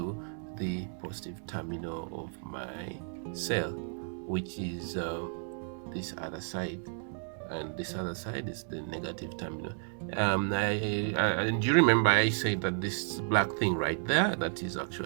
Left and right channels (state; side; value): silent; left; 56 dB below the other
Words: the positive terminal of my cell, which is this other side, and this other side is the negative terminal. And you remember I said that this black thing right there, that is